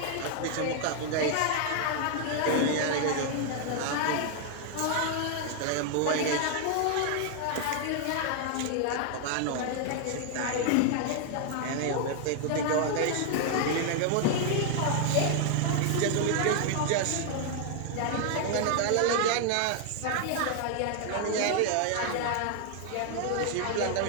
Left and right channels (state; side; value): different; both; correlation 0.00